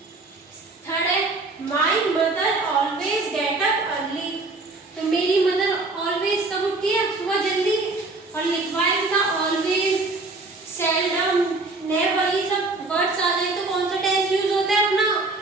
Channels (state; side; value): quieter; left; 3.3 dB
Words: Third है my mother always get up early. तो मेरी मदर ऑलवेज कब उठती है? सुबह जल्दी। और लिखवाया था ऑलवेज, सेल्डम, नेवर, ये सब वर्ड्स आ जाए तो कौन सा टेंस यूज होता है अपना?